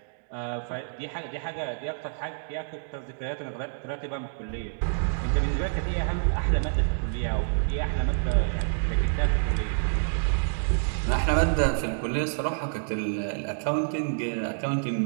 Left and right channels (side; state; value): left; silent; digital silence